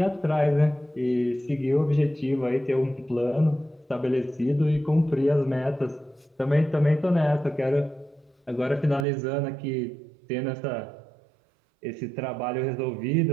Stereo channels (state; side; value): drops out; left; at 9.1 s